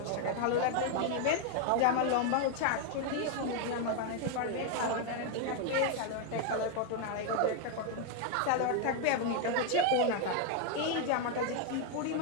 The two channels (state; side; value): different; both; correlation 0.01